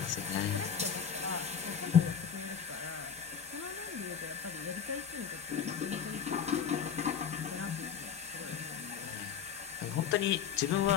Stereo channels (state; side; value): quieter; right; 7.6 dB